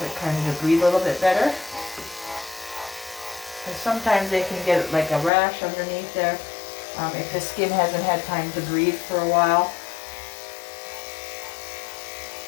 it kind of breathe a little bit better. Because sometimes they can get like a rash underneath there if the skin hasn't had time to breathe for a while.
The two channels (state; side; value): drops out; right; at 5.3 s